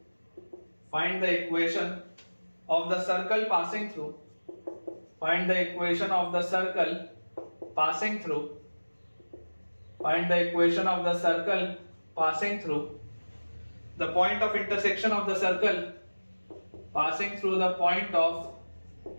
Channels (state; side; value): inverted; both; correlation -1.00